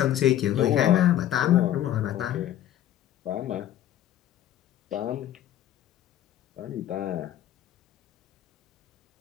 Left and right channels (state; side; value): quieter; right; 12.0 dB